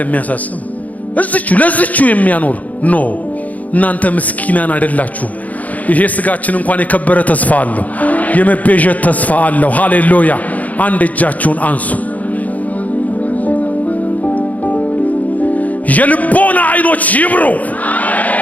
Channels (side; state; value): right; late; 0.075 ms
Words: የሚያሳስብ እዚቹ ለዚቹ የሚያኖር ኖ እናንተ ምስኪናን አይደላችሁ። ይሄ ስጋችን እንኳን የከበረ ተስፋ አለው፣ የመቤዠት ተስፋ አለው። ሃሌሉያ! አንድ እጃችሁን አንሱ። የልቦና አይኖች ይብሩ።